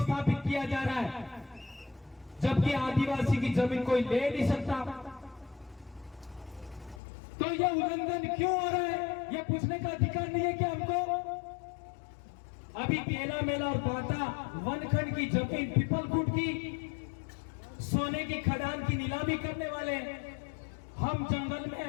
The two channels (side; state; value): right; drops out; at 7.0 s